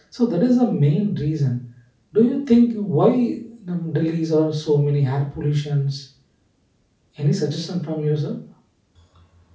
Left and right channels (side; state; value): both; identical; correlation 1.00